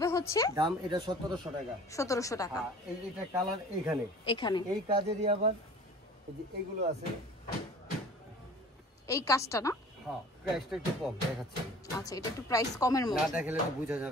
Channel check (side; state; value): both; normal; correlation 0.45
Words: হচ্ছে, দাম এটা 1700 টাকা। 1700 টাকা। এই এটা কালার এখানে এই কাজেরই আবার এই যে এগুলো আছে, এই কাজটা না? হ্যাঁ প্রাইসটা একটু কম দেখাচ্ছি। আচ্ছা এটা একটু প্রাইস কমের মধ্যে, না দেখালে তো বোঝা